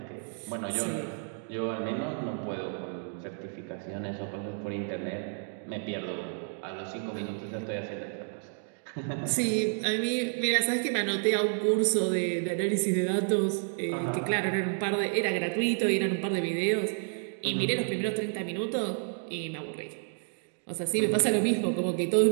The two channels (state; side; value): silent; left; 57 dB below the other